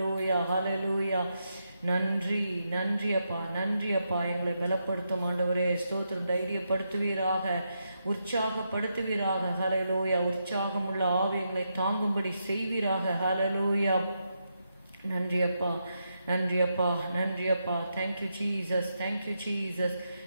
ஹல்லேலூயா. நன்றி நன்றி அப்பா, நன்றி அப்பா. எங்களை பலப்படுத்தும் ஆண்டவரே. ஸ்தோத்திரம். தைரியப்படுத்துவீராக, உற்சாகப்படுத்துவீராக. ஹல்லேலூயா. உற்சாகமுள்ள ஆவி எங்களை தாங்கும்படி செய்வீராக. ஹல்லேலூயா. நன்றி அப்பா, நன்றி அப்பா, நன்றி அப்பா. Thank you Jesus, thank you Jesus.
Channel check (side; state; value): both; inverted; correlation -0.83